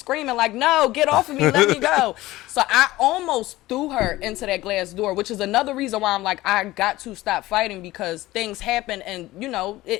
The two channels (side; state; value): right; quieter; 17.6 dB